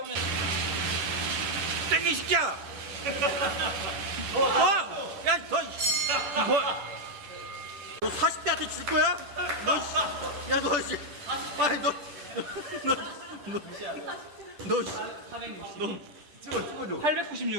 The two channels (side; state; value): left; late; 10 ms